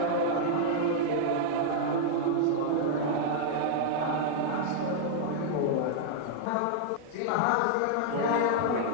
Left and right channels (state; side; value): different; both; correlation -0.01